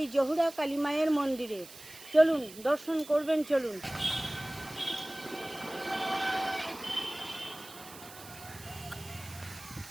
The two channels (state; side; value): noise; right; hiss, 17 dB below the sound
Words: জহুরা কালী মায়ের মন্দিরে। চলুন দর্শন করবেন, চলুন।